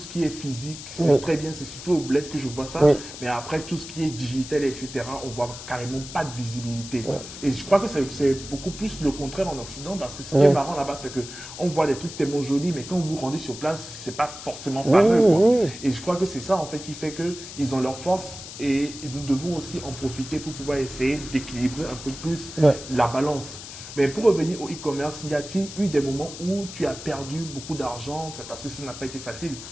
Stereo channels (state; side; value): noise; left; hiss, 12 dB below the sound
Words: qui est physique. C'est Oui. très bien, c'est surtout au bled que je vois ça. Oui. Mais après, tout ce qui est digital, etc., on voit carrément pas de visibilité. Oui. Et je crois que c'est beaucoup plus le contraire en Occident parce que ce qui Oui. est marrant là-bas, c'est que on voit des trucs tellement jolis, mais quand vous vous rendez sur place, c'est pas forcément fameux, Oui, quoi. oui. Et je crois que c'est ça, en fait, qui fait qu'ils ont leur force et nous devons aussi en profiter pour pouvoir essayer d'équilibrer un peu plus Ouais. la balance. Mais pour revenir au e-commerce, y a-t-il eu des moments où tu as perdu beaucoup d'argent? C'est parce que ça n'a pas été facile.